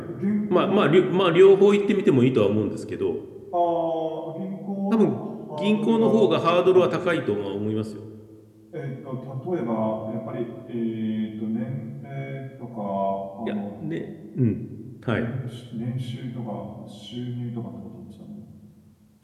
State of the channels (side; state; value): both; identical; correlation 1.00